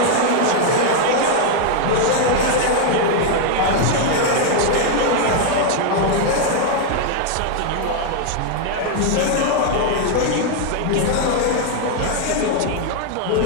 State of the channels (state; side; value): different; both; correlation 0.00